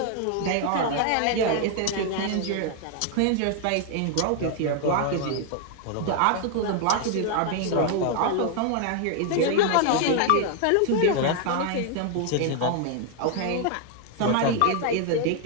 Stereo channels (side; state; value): both; different; correlation 0.00